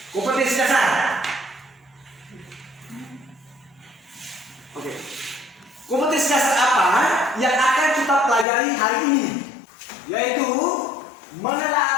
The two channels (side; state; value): right; drops out; at 8.5 s